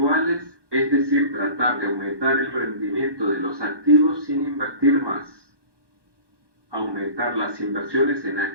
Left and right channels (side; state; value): left; late; 1.2 ms